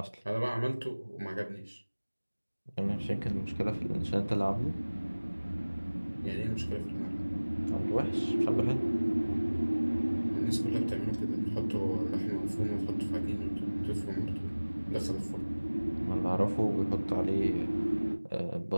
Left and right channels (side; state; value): both; inverted; correlation -1.00